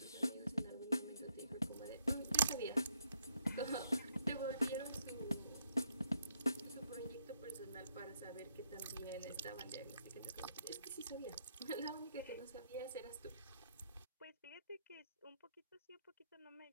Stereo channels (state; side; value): inverted; both; correlation -0.73